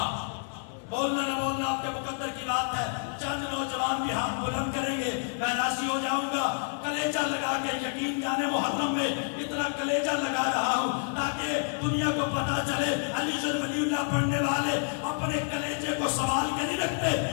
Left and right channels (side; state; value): right; silent; digital silence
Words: بولنا نہ بولنا آپ کے مقدر کی بات ہے. چند نوجوان بھی ہاتھ بلند کریں گے، میں راضی ہو جاؤں گا. کلیجہ لگا کے، یقین جانے محرم میں اتنا کلیجہ لگا رہا ہوں تاکہ دنیا کو پتا چلے علی جن ولی اللہ پڑھنے والے اپنے کلیجے کو سوال کے نہیں رکھتے.